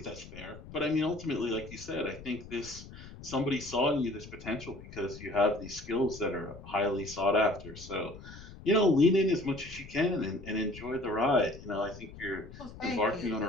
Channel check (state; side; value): noise; left; rumble, 15 dB below the sound